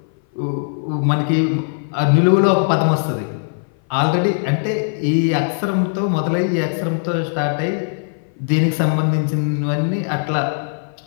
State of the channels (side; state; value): right; silent; 59 dB below the other